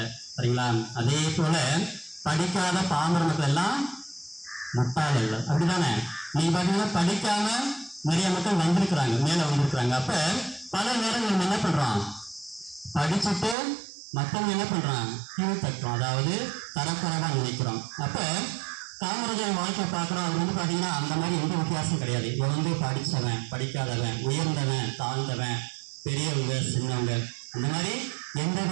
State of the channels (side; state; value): left; drops out; at 13.6 s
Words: சரிங்களா? அதே போல படிக்காத பாமர மக்கள் எல்லாம் முட்டாள் அல்ல, அப்படிதானே? நீங்க பார்த்தீங்கன்னா படிக்காம நிறைய மக்கள் வந்திருக்கிறாங்க, மேல வந்திருக்கிறாங்க. அப்ப பல நேரங்கள் நம்ம என்ன பண்றோம், படிச்சுட்டு மற்றவங்க என்ன பண்றான், கீழ் தட்டுறோம், அதாவது தரக்குறைவா நினைக்கிறோம். அப்ப காமராஜர் வாழ்க்கை பார்க்குறோம், அது பார்த்தீங்கன்னா அந்த மாதிரி எந்த வித்தியாசம் கிடையாது. இவன் படித்தவன், படிக்காதவன், உயர்ந்தவன், தாழ்ந்தவன், பெரியவங்க, சின்னவங்க, அந்த மாதிரி எந்த